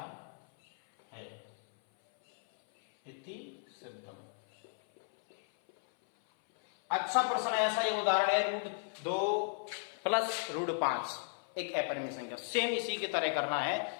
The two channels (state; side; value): silent; right; 54 dB below the other